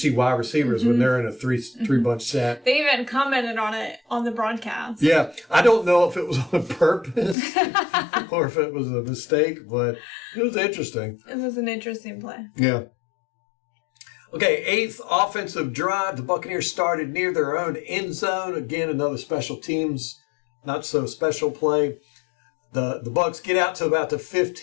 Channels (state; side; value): drops out; right; at 7.4 s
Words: wide receivers when they're in a three bunch set. They even commented on it on the broadcast. Yeah. I don't know if it was on purpose or if it was a mistake, but it was interesting. It was an interesting play. Yeah. Okay, 8th offensive drive. The Buccaneers started near their own end zone. Again, another special teams, not so special play. The Bucs get out to about the